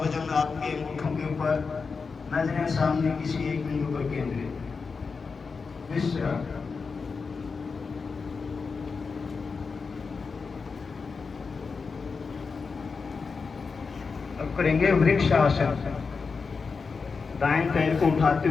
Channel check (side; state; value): right; quieter; 4.9 dB